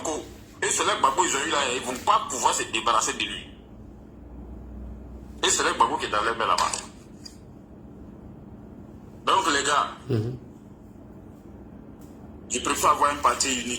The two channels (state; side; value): identical; both; correlation 1.00